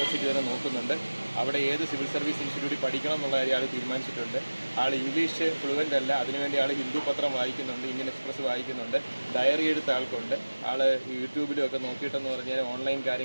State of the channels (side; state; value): both; inverted; correlation -1.00